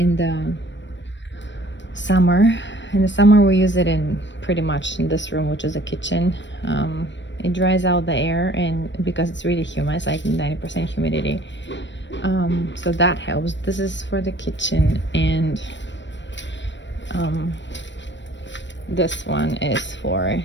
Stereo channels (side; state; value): right; late; 0.53 ms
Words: the summer. In the summer we use it in pretty much in this room, which is a kitchen. It dries out the air, and because it's really humid, it's like 90% humidity, so that helps. This is for the kitchen, and this one is for